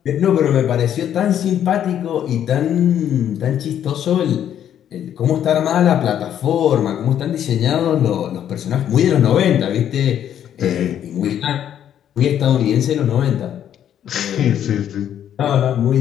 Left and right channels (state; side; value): quieter; right; 10.1 dB